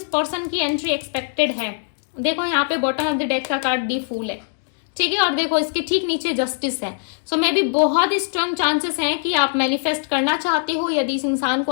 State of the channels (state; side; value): silent; right; digital silence